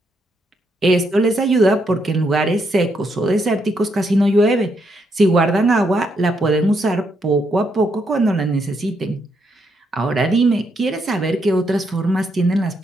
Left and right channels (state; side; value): normal; both; correlation 0.77